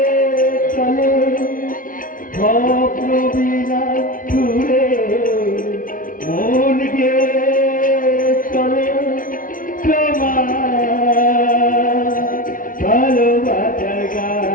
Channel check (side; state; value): right; late; 0.39 ms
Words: চলে, স্বপ্ন বিনার ছুড়ে মনকে চলে তোমার ভালোবাসার